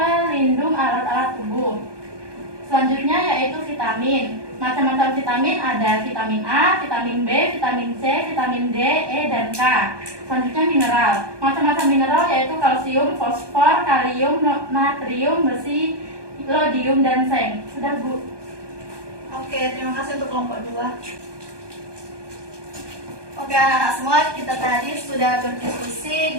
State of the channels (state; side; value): late; left; 1.2 ms